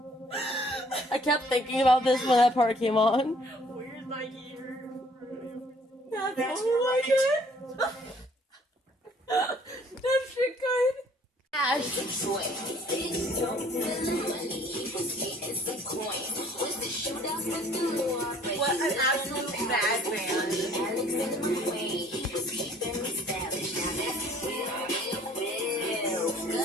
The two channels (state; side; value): normal; both; correlation 0.58